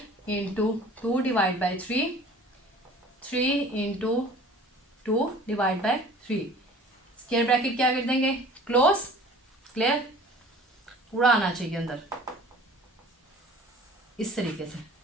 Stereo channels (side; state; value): both; normal; correlation 0.47